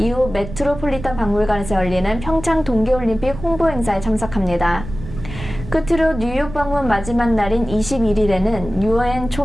메트로폴리탄 박물관에서 열리는 평창 동계올림픽 홍보 행사에 참석합니다. 끝으로 뉴욕 방문 마지막 날인 21일에는 유엔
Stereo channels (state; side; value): noise; right; rumble, 11 dB below the sound